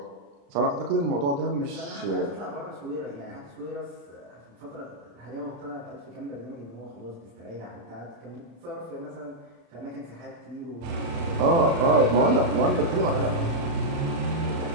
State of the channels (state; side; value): late; left; 35 ms